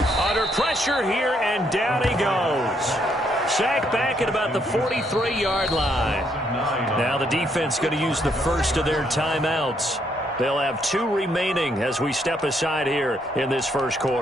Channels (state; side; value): normal; both; correlation 0.73